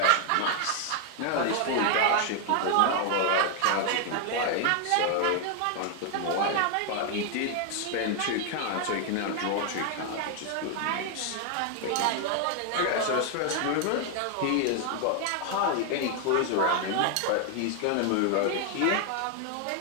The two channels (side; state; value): both; different; correlation 0.00